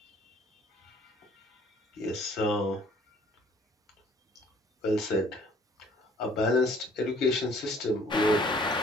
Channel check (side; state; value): both; normal; correlation 0.57